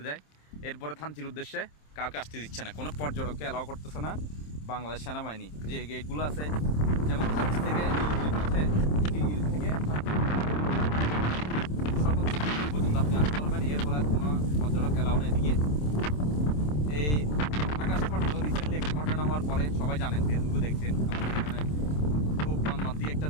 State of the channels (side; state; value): right; late; 27 ms